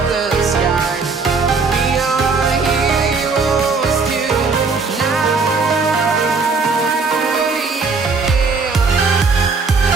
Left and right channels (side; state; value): left; quieter; 4.5 dB